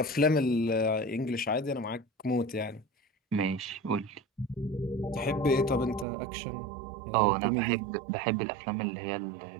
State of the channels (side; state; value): left; drops out; at 6.1 s